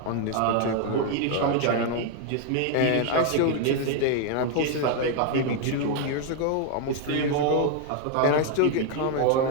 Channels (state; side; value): different; both; correlation 0.01